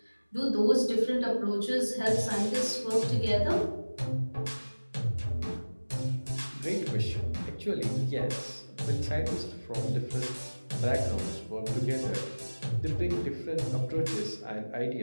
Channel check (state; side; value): inverted; both; correlation -1.00